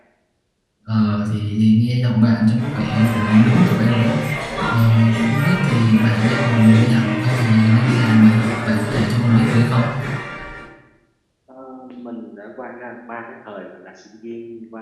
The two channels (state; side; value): identical; both; correlation 1.00